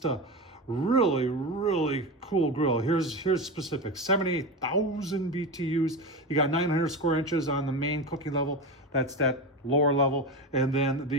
a really, really cool grill. Here's specific: 78,000 BTUs. You got 900 square inches on the main cooking level. That's that lower level. And then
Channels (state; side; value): normal; both; correlation 0.21